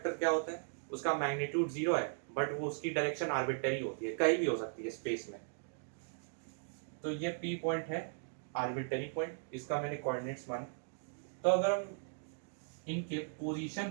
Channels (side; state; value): left; silent; digital silence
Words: क्या होता है? उसका मैग्नीट्यूड 0 है, बट वो उसकी डायरेक्शन आर्बिट्ररी होती है, कहीं भी हो सकती है स्पेस में। तो ये P पॉइंट है आर्बिट्ररी पॉइंट, इसका मैंने कोऑर्डिनेट्स माने। तो अगर हम इनके पोजीशन